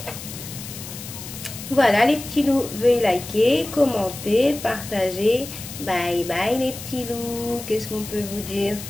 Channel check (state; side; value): noise; left; hiss, 11 dB below the sound